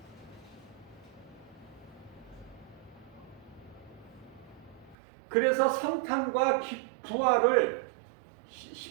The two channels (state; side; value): drops out; left; at 5.0 s